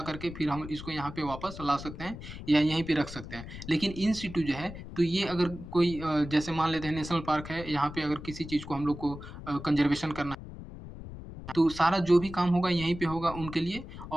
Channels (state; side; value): noise; left; rumble, 12 dB below the sound